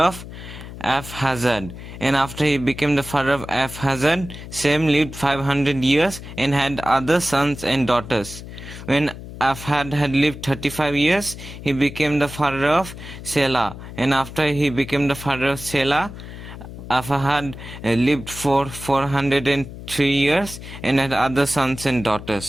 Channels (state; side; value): noise; left; hum, 12 dB below the sound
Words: Arphaxad. And after he became the father of Arphaxad, Sem lived 500 years and had other sons and daughters. When Arphaxad had lived 35 years, he became the father of Selah. And after he became the father of Selah, Arphaxad lived for 403 years and had other sons and